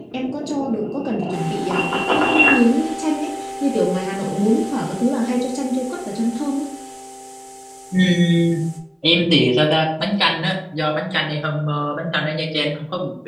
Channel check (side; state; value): both; identical; correlation 1.00